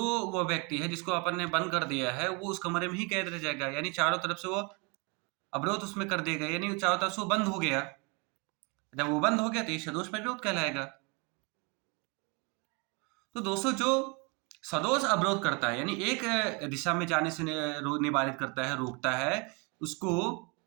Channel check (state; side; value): quieter; left; 30.8 dB